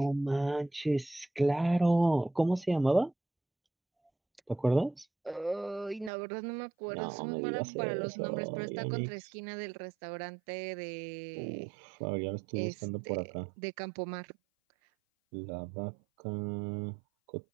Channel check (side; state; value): left; drops out; at 6.1 s